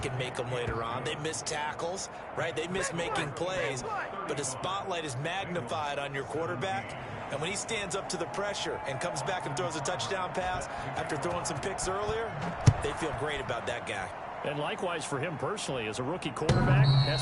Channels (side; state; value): both; identical; correlation 1.00